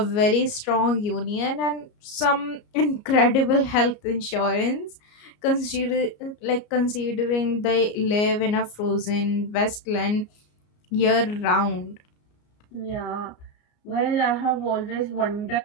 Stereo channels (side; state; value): right; late; 33 ms